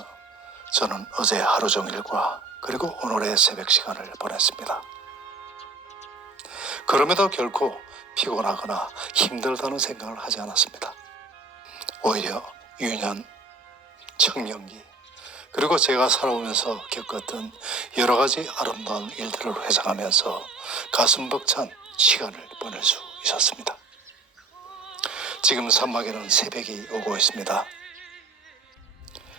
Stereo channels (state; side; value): quieter; left; 3.5 dB